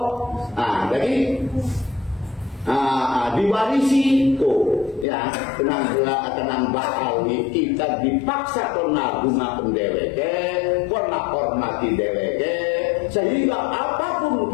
Nah, jadi diwarisi tuh, ya, tenang Ba'alwi kita dipaksa karena bunga pendeweke, karena hormati deweke, sehingga apapun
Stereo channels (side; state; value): right; drops out; at 5.1 s